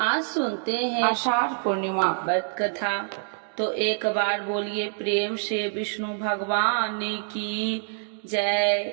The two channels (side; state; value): left; silent; digital silence